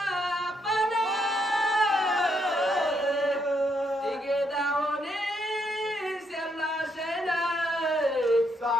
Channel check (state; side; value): normal; both; correlation 0.75